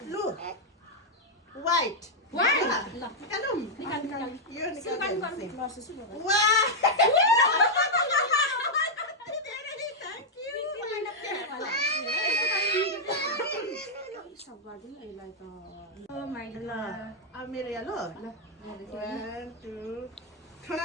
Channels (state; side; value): normal; both; correlation -0.03